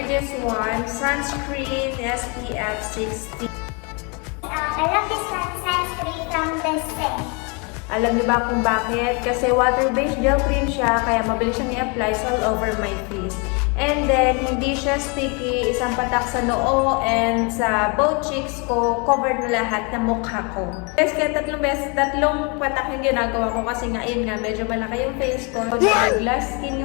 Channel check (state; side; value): quieter; right; 32.6 dB